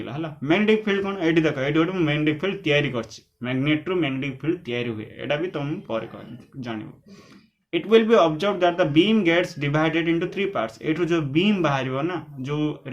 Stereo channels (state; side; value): identical; both; correlation 1.00